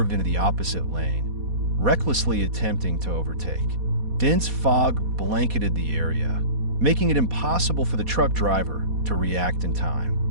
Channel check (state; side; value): late; left; 4.2 ms